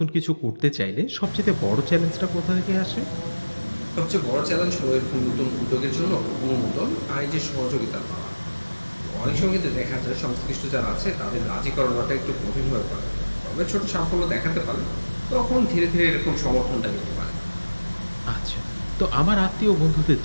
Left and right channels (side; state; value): both; inverted; correlation -1.00